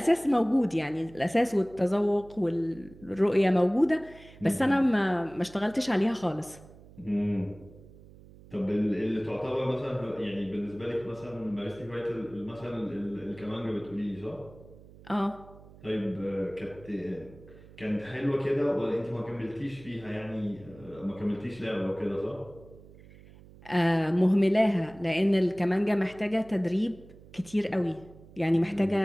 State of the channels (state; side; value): noise; right; hum, 21 dB below the sound